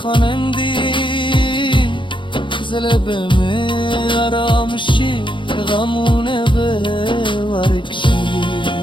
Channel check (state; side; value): late; right; 0.24 ms